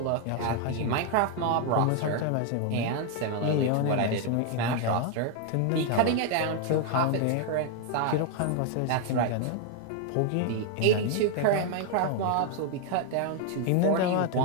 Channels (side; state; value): both; different; correlation 0.01